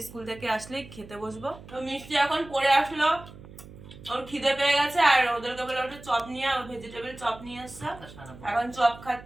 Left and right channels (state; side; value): noise; right; hum, 18 dB below the sound